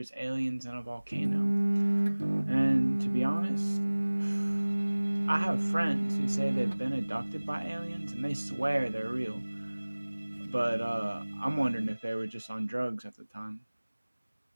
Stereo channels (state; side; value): inverted; both; correlation -1.00